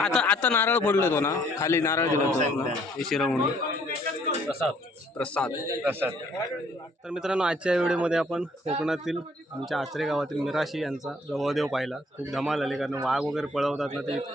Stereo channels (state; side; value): normal; both; correlation 0.62